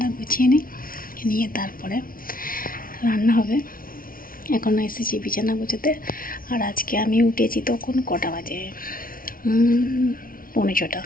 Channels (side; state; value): right; late; 0.42 ms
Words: গুছিয়ে নিয়ে তারপরে রান্না হবে। এখন এসেছি বিছানা গুছোতে। আর আজকে আমি উঠেছি তখন কটা বাজে,